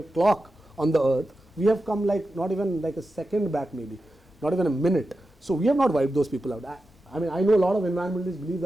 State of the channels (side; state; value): both; normal; correlation 0.91